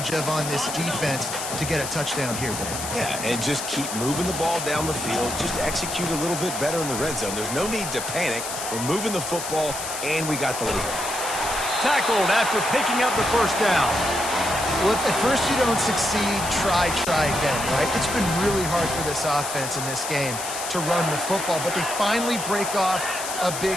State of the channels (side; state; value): left; noise; hiss, 6 dB below the sound